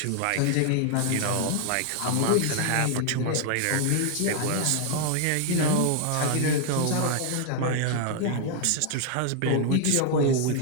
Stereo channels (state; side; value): different; both; correlation 0.00